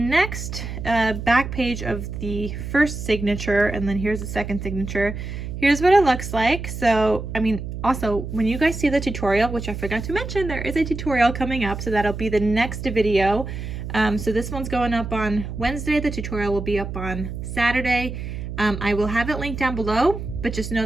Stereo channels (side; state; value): right; noise; hum, 7 dB below the sound